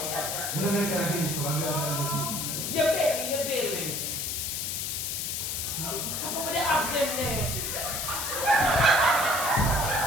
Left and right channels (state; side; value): noise; left; hiss, 2 dB below the sound